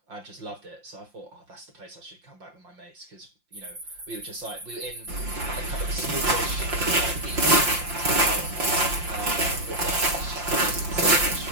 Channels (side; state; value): left; late; 5.7 ms